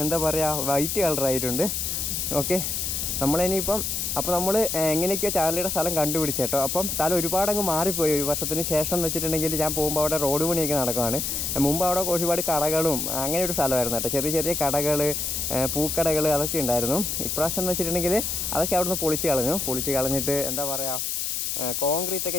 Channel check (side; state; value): left; noise; hiss, 1 dB below the sound